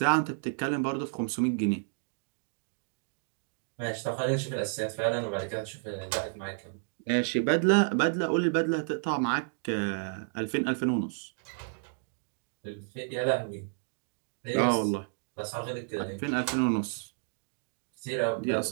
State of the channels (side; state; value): left; silent; digital silence